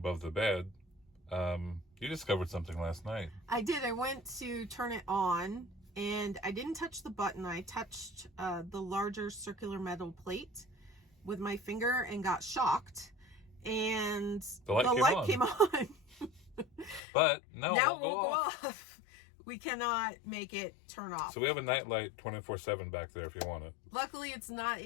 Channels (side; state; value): right; drops out; at 17.0 s